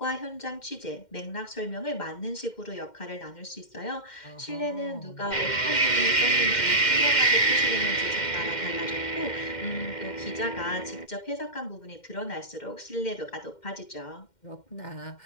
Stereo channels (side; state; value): right; late; 2.1 ms